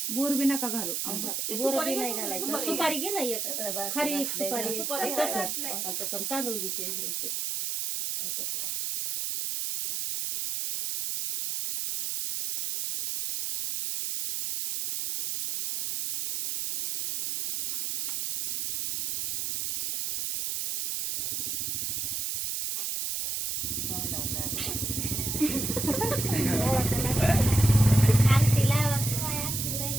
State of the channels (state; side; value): noise; right; hiss, 1 dB below the sound